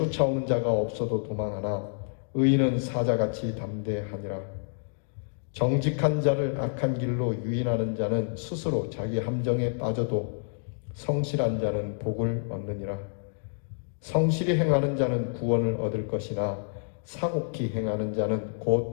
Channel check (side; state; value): right; silent; digital silence